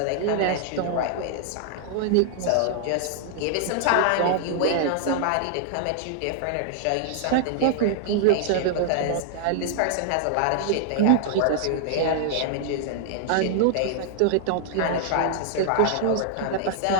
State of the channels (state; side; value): different; both; correlation -0.01